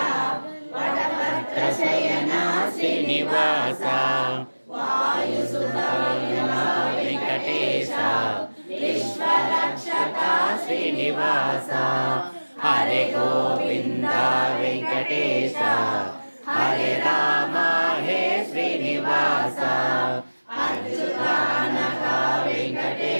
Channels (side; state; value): both; inverted; correlation -1.00